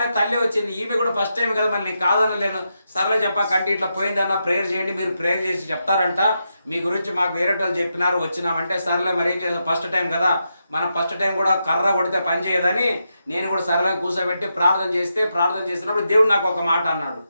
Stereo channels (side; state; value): both; inverted; correlation -0.85